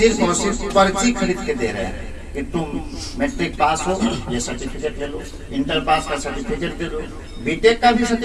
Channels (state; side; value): identical; both; correlation 1.00